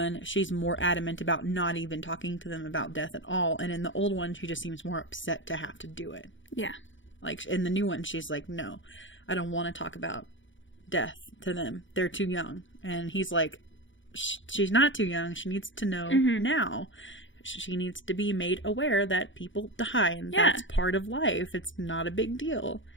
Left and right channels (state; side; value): late; right; 0.56 ms